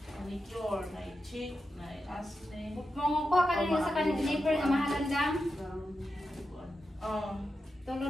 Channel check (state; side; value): normal; both; correlation 0.89